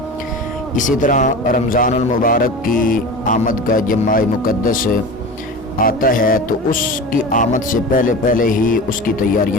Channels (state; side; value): normal; both; correlation 0.32